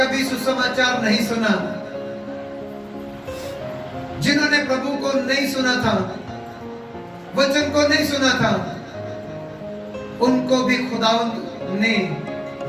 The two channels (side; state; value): both; identical; correlation 1.00